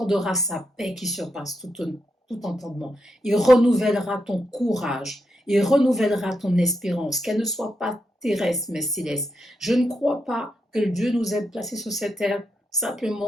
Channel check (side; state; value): both; normal; correlation 0.83